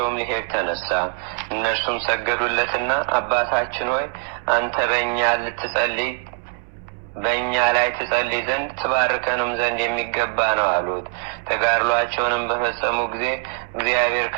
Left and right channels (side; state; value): left; silent; 55 dB below the other